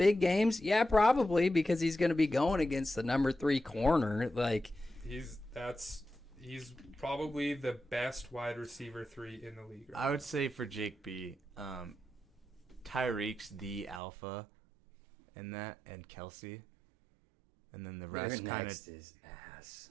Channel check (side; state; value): left; drops out; at 14.0 s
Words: games? Yeah, probably, because he's going to be going against the number 3 corner. He's probably the best wide receiver 3 in the league. Right I would say for Jake B, Tyreek's the alpha in that, and Kelsey. And then the rest kind next of is ass.